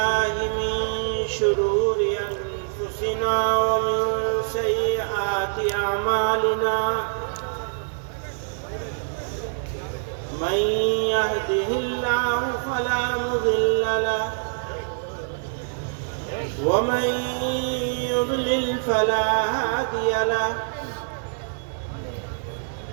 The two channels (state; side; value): silent; left; digital silence